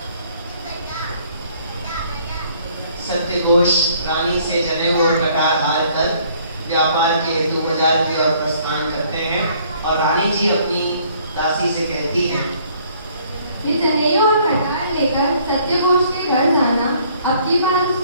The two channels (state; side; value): inverted; both; correlation -0.61